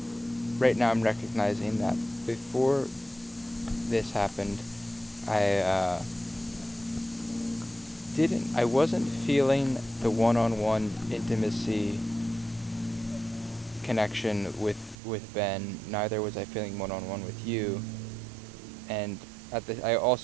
right now I'm recognizing that before this happened, I wasn't feeling the one-on-one intimacy connection with Ben. Neither was I feeling one-on-one with you, and I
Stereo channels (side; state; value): left; drops out; at 15.0 s